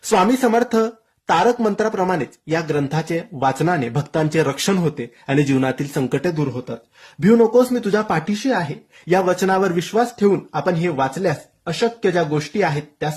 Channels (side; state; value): both; identical; correlation 1.00